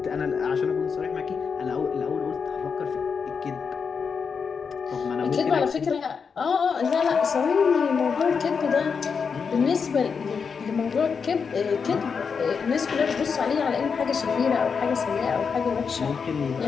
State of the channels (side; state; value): right; quieter; 5.8 dB